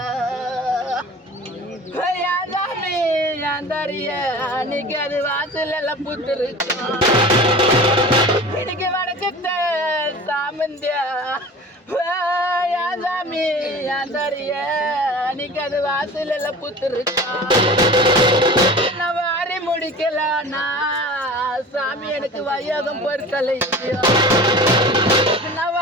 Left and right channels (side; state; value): both; normal; correlation 0.38